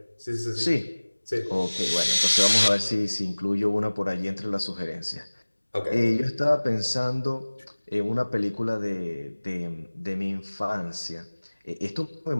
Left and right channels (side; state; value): both; inverted; correlation -1.00